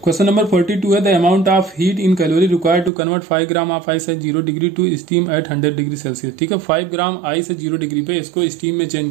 क्वेश्चन नंबर 42 है, the amount of heat in calorie required to convert 5 gram of ice at 0 degree to steam at 100 degree Celsius, ठीक है। 5 ग्राम आइस है 0 डिग्री पे, इसको स्टीम में चेंज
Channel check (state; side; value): drops out; left; at 2.9 s